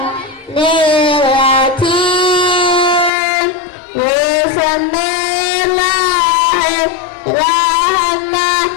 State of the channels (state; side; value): drops out; right; at 3.1 s